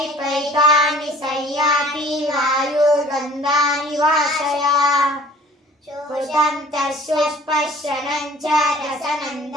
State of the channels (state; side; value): normal; both; correlation 0.50